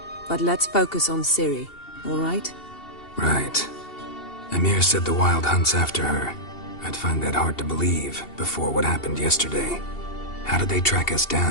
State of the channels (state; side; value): late; right; 2.7 ms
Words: But let's focus on Ciri, all right? Right. Emir said the Wild Hunt's after her. I'd find that hard to believe before what happened yesterday. How did they track us